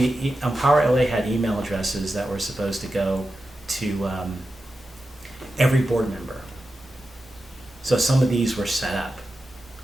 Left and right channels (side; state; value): both; normal; correlation 0.91